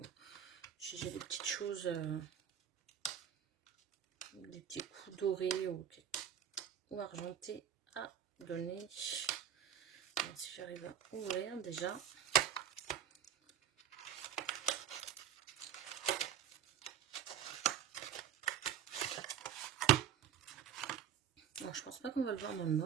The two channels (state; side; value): quieter; left; 9.1 dB